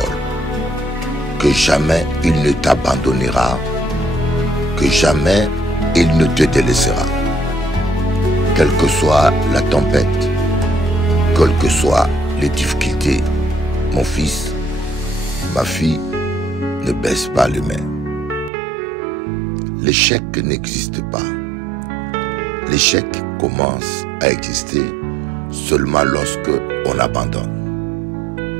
que jamais il ne t'abandonnera, que jamais il ne te délaissera. Quelle que soit la tempête, quelles que soient les difficultés, mon fils, ma fille, ne baisse pas les mains. L'échec n'existe pas. L'échec commence à exister seulement lorsque on abandonne.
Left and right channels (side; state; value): left; drops out; at 18.5 s